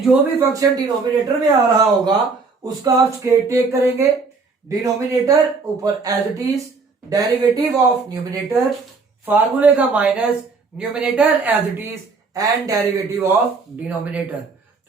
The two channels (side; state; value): left; quieter; 4.4 dB